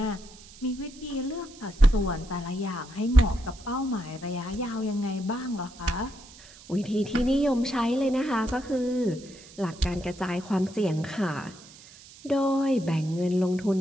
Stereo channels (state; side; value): noise; right; hiss, 21 dB below the sound